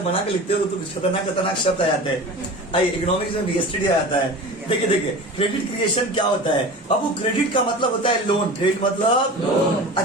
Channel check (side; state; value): both; normal; correlation 0.35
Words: बना के लिखते हो तो कुछ खतरनाक खतरनाक शब्द आ जाते हैं। आइए, इकोनॉमिक्स में बीएसटीडी आ जाता है। देखिए क्रेडिट क्रिएशन क्या होता है बाबू? क्रेडिट का मतलब होता है लोन। क्रेडिट मतलब लोन।